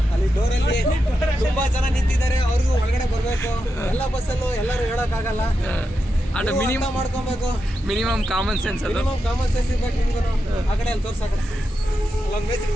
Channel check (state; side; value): normal; both; correlation 0.87